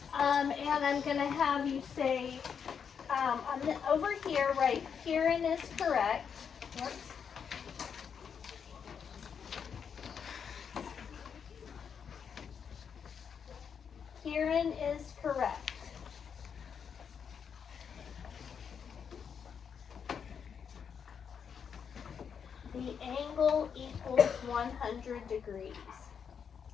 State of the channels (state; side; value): quieter; right; 7.0 dB